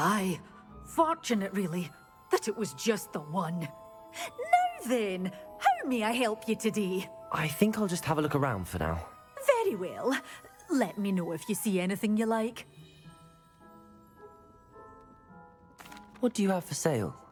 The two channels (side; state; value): both; identical; correlation 1.00